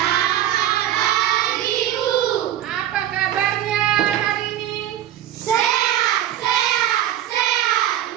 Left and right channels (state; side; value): quieter; left; 11.8 dB